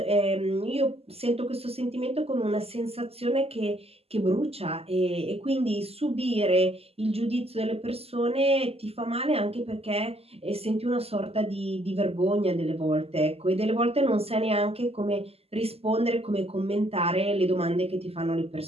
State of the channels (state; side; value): late; left; 0.29 ms